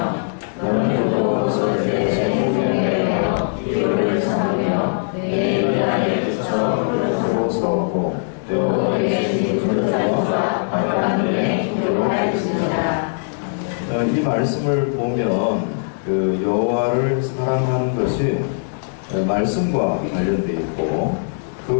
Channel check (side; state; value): right; silent; digital silence